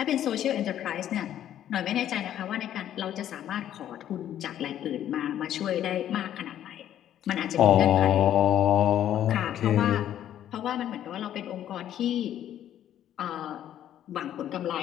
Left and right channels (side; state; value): right; quieter; 11.2 dB